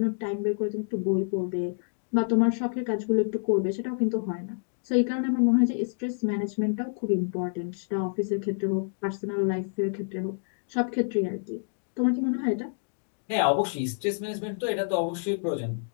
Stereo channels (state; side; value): silent; right; digital silence